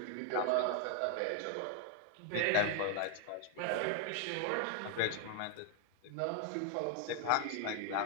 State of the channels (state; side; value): different; both; correlation 0.00